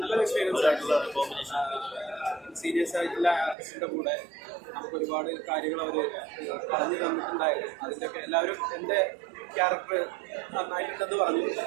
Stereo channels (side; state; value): left; drops out; at 3.6 s